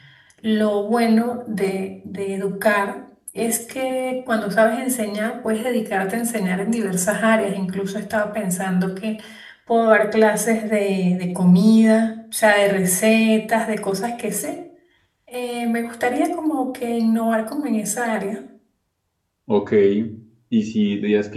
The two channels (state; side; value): identical; both; correlation 1.00